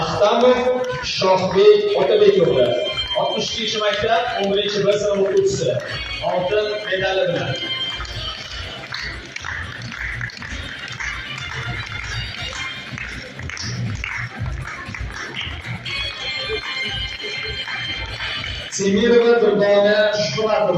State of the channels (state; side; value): identical; both; correlation 1.00